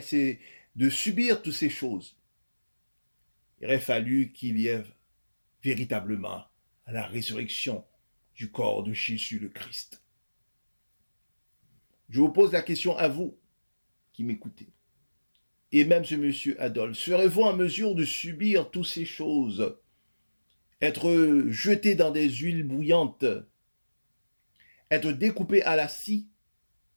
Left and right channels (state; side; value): inverted; both; correlation -1.00